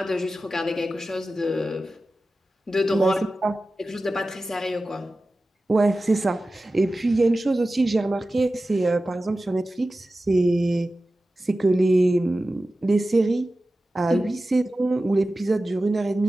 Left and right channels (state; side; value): normal; both; correlation 0.95